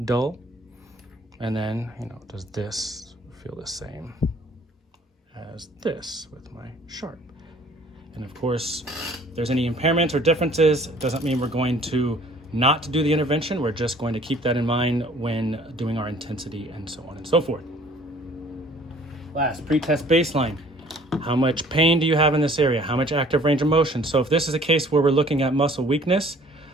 dull? And then, does this feel the same as this with my sharp? And of course, if there's any impairments or differences, it doesn't mean we're going to not do the intervention. We're just going to keep that in mind when doing our intensity and so on and so forth. Last, pre-test baseline. How much pain do you have in this area? How much active range of motion? So if this is a case where we're looking at muscle weakness,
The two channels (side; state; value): both; normal; correlation 0.54